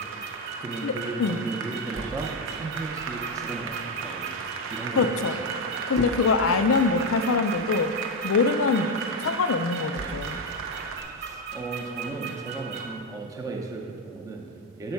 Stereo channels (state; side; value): normal; both; correlation 0.08